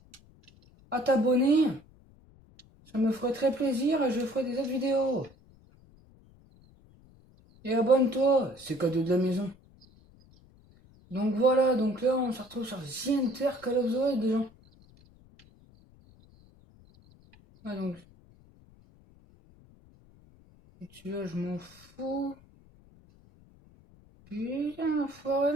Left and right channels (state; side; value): noise; left; rumble, 27 dB below the sound